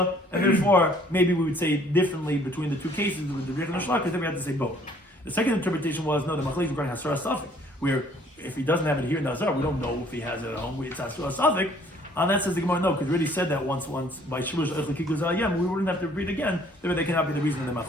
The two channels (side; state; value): both; normal; correlation 0.59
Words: and therefore maybe we would say differently between the two cases with the Bechel and Shlak, because then we have to say both. The second interpretation was no, the machlekes regarding hasra safik, where if he doesn't have it here in the azar, we don't know if he has it at home. It's hasra safik. And that says the Gemara, no, because we already said that once by Shilush Echlikikuz Ayem, we wouldn't have to read again, therefore they cannot be the reason in the